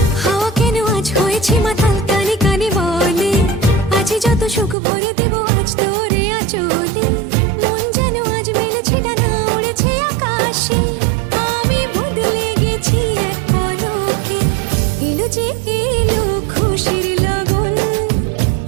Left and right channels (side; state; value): left; drops out; at 4.8 s